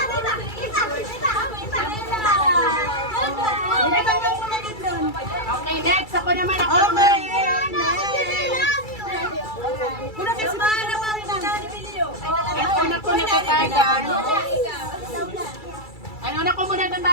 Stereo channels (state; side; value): late; right; 2.3 ms